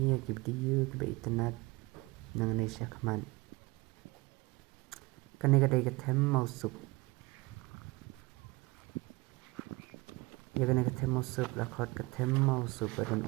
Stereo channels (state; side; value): quieter; left; 23.6 dB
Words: ya ki video ki ba internet nang ne sha khaman kene ka dai ka them mau sup ya kene ka them mau sup la khot ka them mau sup dan